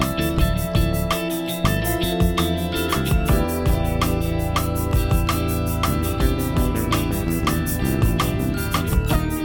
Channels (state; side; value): identical; both; correlation 1.00